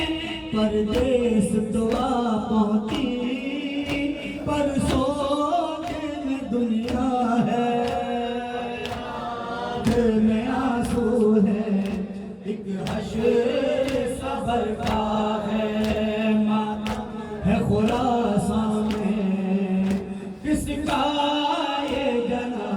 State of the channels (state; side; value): identical; both; correlation 1.00